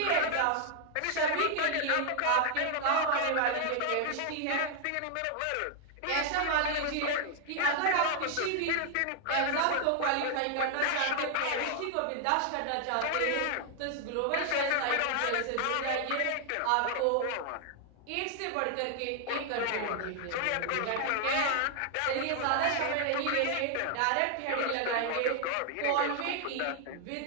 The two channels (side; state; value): both; different; correlation 0.00